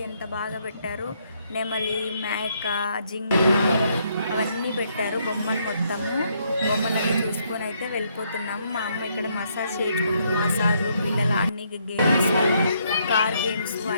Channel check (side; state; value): both; inverted; correlation -0.72